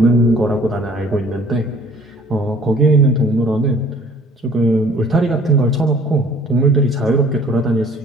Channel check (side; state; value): both; normal; correlation 0.53